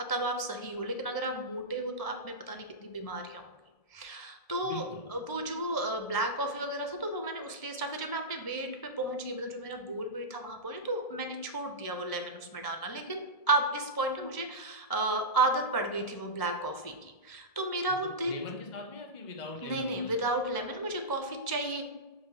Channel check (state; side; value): late; right; 1.7 ms